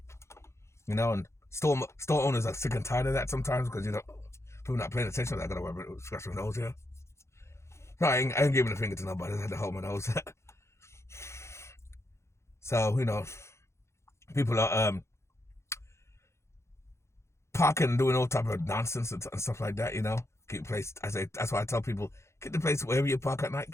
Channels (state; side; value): late; right; 0.13 ms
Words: You know, and store owners are sick and tired of that sometimes because people not paying attention. I gotta worry about scratch my nose here. No, I ain't giving a finger to nobody. I had to hold my nose. So people are parking and doing all type of nonsense and stuff like that. Keep the place. That's why I tell people, keep the place wherever you park at night.